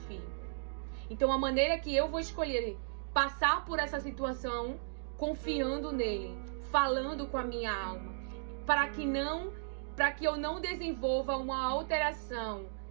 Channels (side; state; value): left; silent; digital silence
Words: Então a maneira que eu vou escolher passar por essa situação, confiando nele, falando com a minha alma, para que eu não desenvolva uma alteração